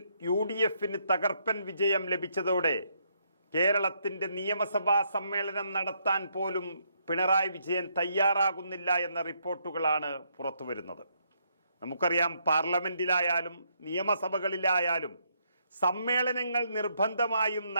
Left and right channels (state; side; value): inverted; both; correlation -0.74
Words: UDFന് തകർപ്പൻ വിജയം ലഭിച്ചതോടെ കേരളത്തിന്റെ നിയമസഭാ സമ്മേളനം നടത്താൻ പോലും പിണറായി വിജയൻ തയ്യാറാകുന്നില്ല എന്ന റിപ്പോർട്ടുകളാണ് പുറത്തുവരുന്നത്. നമുക്കറിയാം, പാർലമെന്റിലായാലും നിയമസഭകളിലായാലും സമ്മേളനങ്ങൾ നിർബന്ധമായും